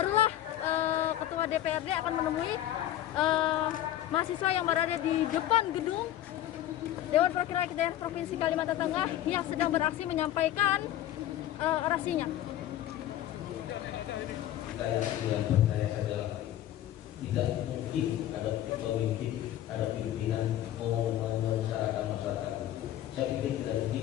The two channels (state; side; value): quieter; right; 12.7 dB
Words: Ketua DPRD akan menemui mahasiswa yang berada di depan gedung Dewan Perwakilan Rakyat Daerah Provinsi Kalimantan Tengah yang sedang beraksi menyampaikan orasinya. Yang percaya saja tidak mungkin ada pemimpin, ada pimpinan mau menyerahkan masyarakat. Saya pikir tidak